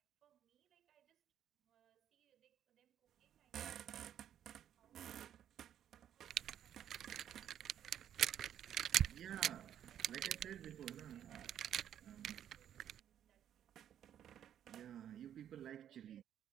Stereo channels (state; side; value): quieter; left; 10.2 dB